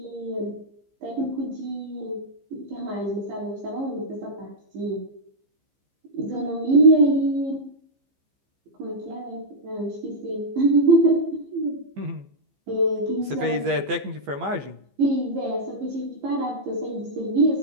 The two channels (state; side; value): late; left; 15 ms